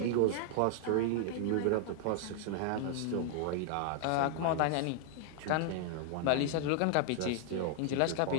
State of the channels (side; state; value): both; different; correlation 0.00